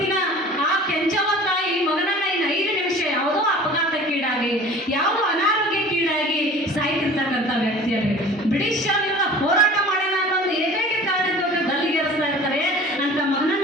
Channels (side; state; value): both; normal; correlation 0.43